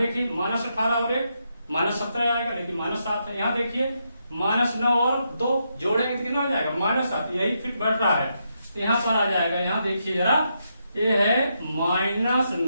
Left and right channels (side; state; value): both; inverted; correlation -0.81